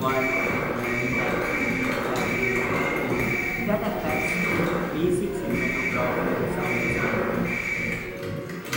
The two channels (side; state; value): both; identical; correlation 1.00